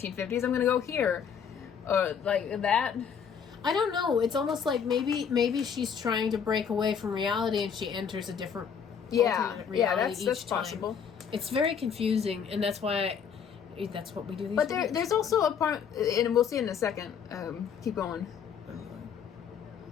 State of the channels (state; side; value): quieter; right; 7.2 dB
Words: I'm going to go here, or like that? I don't know. It's almost like maybe she's trying to break away from reality and she enters a different alternate reality that's each time. possible. It's very confusing, and that's why that's what we do. But there's also a part, and we'll see in a second. Keep going.